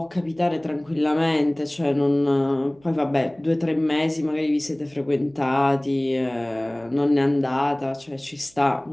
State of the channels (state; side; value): noise; right; hum, 30 dB below the sound